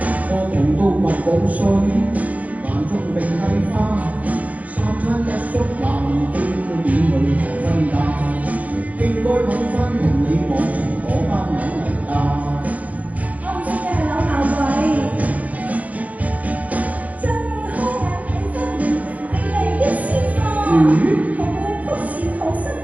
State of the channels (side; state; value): left; late; 0.072 ms